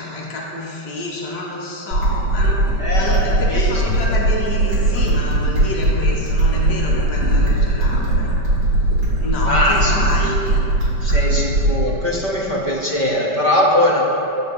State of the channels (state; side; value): late; left; 5.1 ms